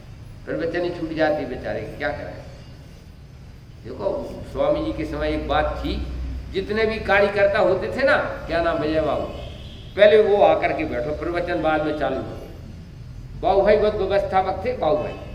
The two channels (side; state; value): both; identical; correlation 1.00